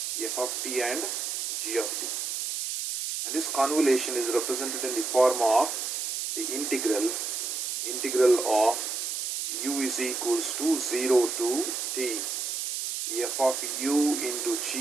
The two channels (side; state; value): right; noise; hiss, 3 dB below the sound